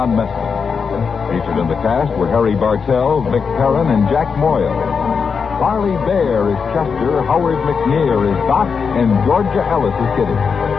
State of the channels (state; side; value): quieter; right; 5.8 dB